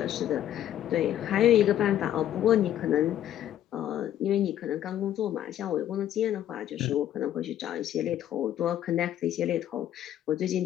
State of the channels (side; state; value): right; quieter; 11.5 dB